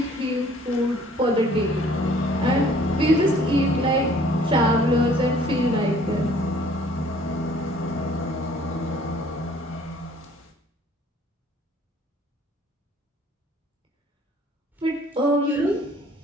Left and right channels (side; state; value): both; normal; correlation 0.56